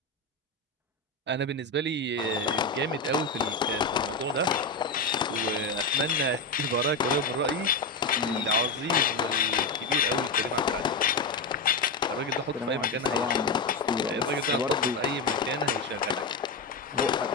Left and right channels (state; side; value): quieter; right; 3.6 dB